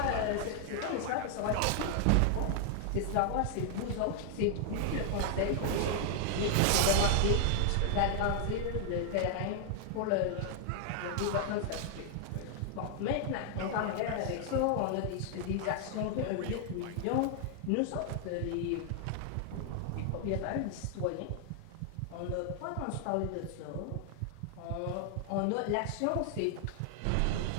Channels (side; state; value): both; different; correlation 0.00